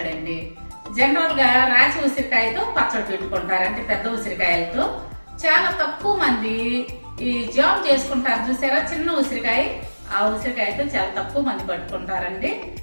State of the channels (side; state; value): both; inverted; correlation -1.00